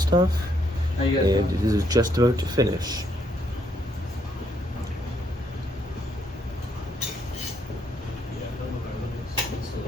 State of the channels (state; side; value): normal; both; correlation 0.72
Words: and it is just about to finish.